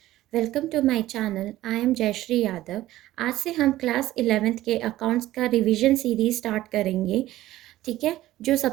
welcome to my channel. I am Jayshree Yadav. आज से हम क्लास 11th के अकाउंट्स का रिवीजन सीरीज स्टार्ट करेंगे। ठीक है। जो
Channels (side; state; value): left; quieter; 15.3 dB